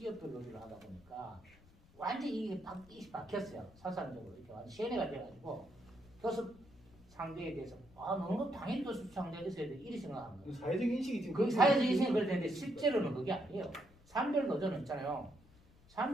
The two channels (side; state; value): left; noise; rumble, 26 dB below the sound